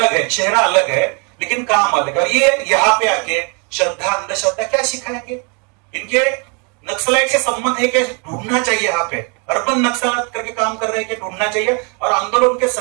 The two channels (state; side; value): quieter; left; 34.9 dB